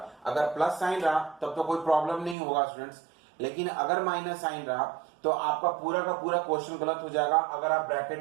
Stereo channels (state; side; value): drops out; left; at 2.4 s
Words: अगर प्लस साइन रहा तब तो कोई प्रॉब्लम नहीं होगा स्टूडेंट्स, लेकिन अगर माइनस साइन रहा तो आपका पूरा का पूरा क्वेश्चन गलत हो जाएगा अगर आप